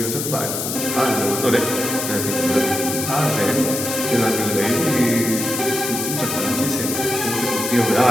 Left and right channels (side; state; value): left; noise; hiss, 3 dB below the sound